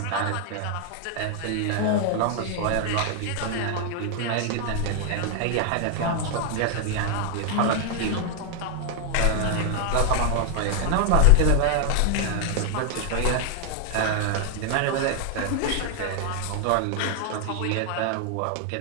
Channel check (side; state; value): both; different; correlation 0.00